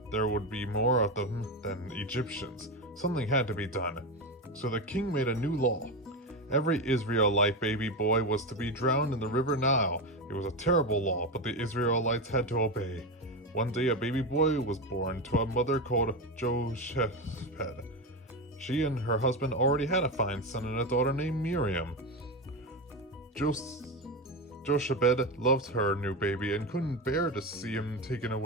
there would be more of them than Egyptians. Something had to be done. So the king made a new law. Every Israelite baby boy was to be drowned in the river Nile. It was a terrible law, but the Israelites had to obey. One day a baby boy was born to a mother called Jochebed. She and her husband already had a fine son and a daughter named Miriam. Jochebed loved her new baby and couldn't bear to see him taken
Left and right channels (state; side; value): normal; both; correlation 0.16